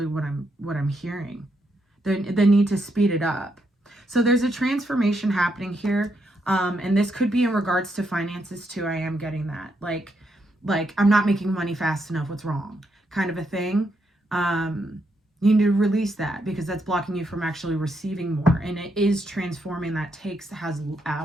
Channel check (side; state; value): both; normal; correlation 0.79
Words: what I'm hearing. The need to speed it up. So there's a transformation happening here. And this could be in regards to finances too. I am getting that. Like I'm not making money fast enough. What's wrong? Kind of a thing. You need to release that because that's blocking you from actually receiving more. And it is transforming. That has